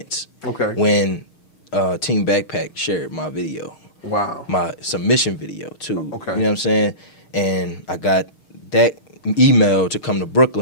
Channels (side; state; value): right; late; 6.5 ms